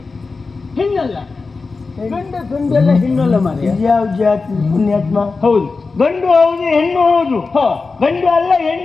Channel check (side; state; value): right; quieter; 4.2 dB